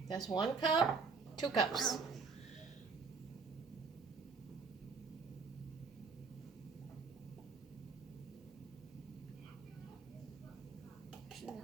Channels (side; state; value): left; quieter; 5.0 dB